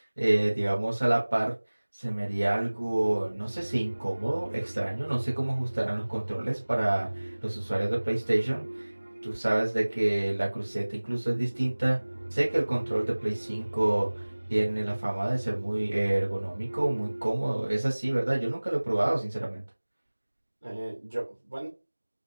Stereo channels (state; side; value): inverted; both; correlation -1.00